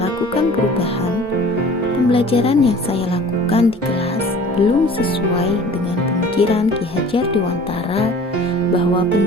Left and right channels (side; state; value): both; normal; correlation 0.45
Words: perubahan, pembelajaran yang saya lakukan di kelas belum sesuai dengan pemikiran Ki Hajar Dewantara bahwa